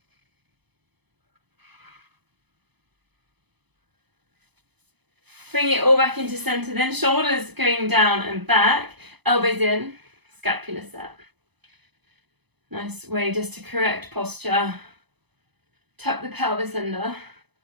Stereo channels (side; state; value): left; late; 0.98 ms